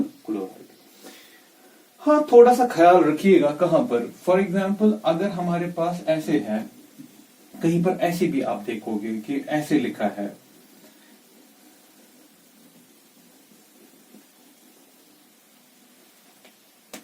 क्लोराइड। हाँ, थोड़ा सा ख्याल रखिएगा कहां पर, फॉर एग्जाम्पल अगर हमारे पास ऐसे है, कहीं पर ऐसे भी आप देखोगे कि ऐसे लिखा है,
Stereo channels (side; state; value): both; identical; correlation 1.00